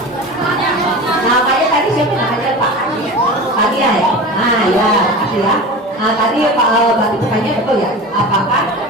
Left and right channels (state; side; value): normal; both; correlation 0.32